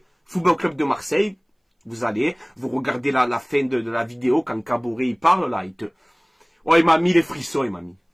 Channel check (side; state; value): both; identical; correlation 1.00